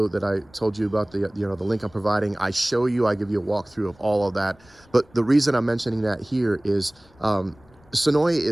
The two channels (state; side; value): noise; left; rumble, 28 dB below the sound